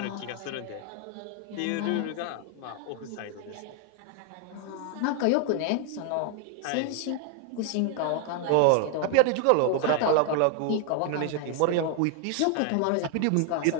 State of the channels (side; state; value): both; different; correlation 0.00